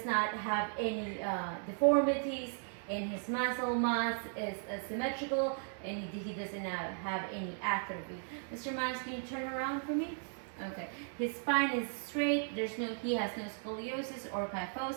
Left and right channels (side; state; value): left; silent; 54 dB below the other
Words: not have any deformities, and his muscle mass is symmetrical, and he doesn't have any atrophy. Mr. Myers, can you turn around for me? Okay. His spine is straight. He has no scoliosis or